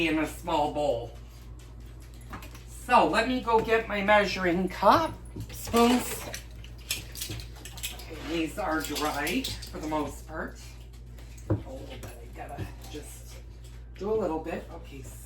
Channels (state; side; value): identical; both; correlation 1.00